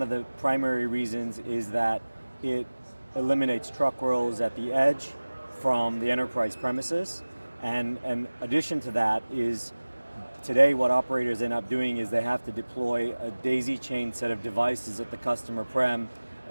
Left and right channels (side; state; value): both; inverted; correlation -1.00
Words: of the primary reasons is that it eliminates truck rolls at the edge from the enterprise premises. And in addition to that is today what operators end up doing is they have to deploy a daisy chain set of devices at the customer prem